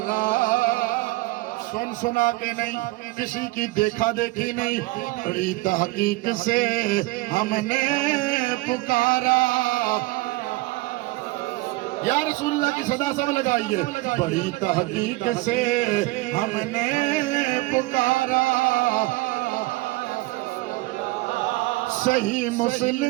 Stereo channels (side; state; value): left; quieter; 21.0 dB